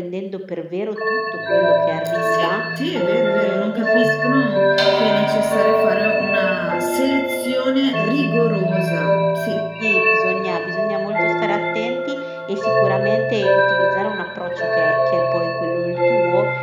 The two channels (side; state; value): both; identical; correlation 1.00